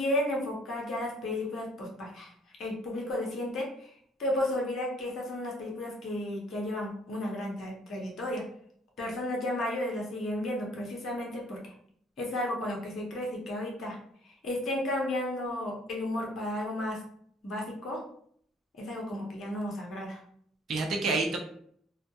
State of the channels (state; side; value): normal; both; correlation 0.58